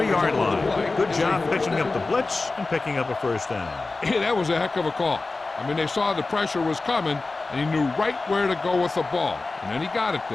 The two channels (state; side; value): quieter; right; 3.5 dB